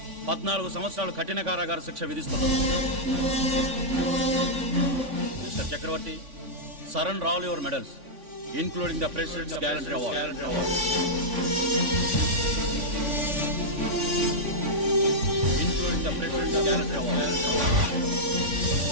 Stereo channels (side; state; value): left; late; 3.5 ms